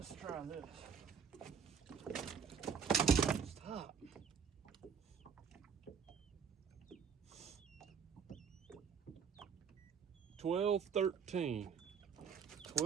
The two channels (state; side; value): quieter; left; 6.8 dB